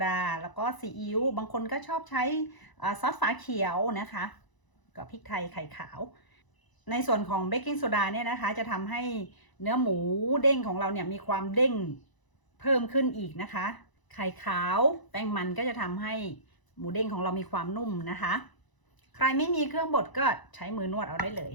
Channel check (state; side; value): late; right; 1.0 ms